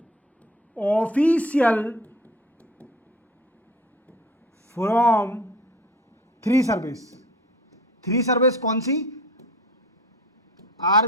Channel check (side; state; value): both; normal; correlation 0.41